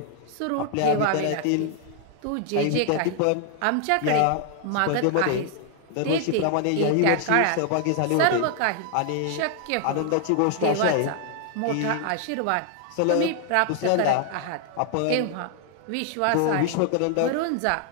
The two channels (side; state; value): both; different; correlation 0.00